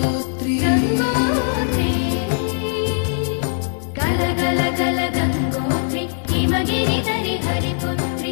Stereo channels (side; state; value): right; silent; digital silence